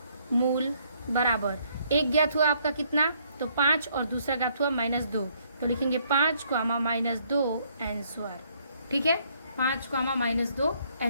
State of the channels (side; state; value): both; inverted; correlation -0.67